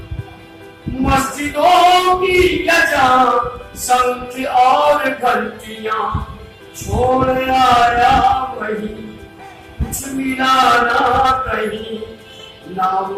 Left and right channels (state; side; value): identical; both; correlation 1.00